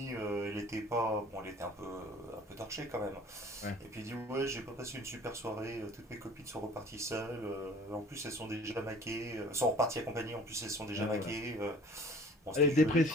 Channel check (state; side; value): normal; both; correlation 0.49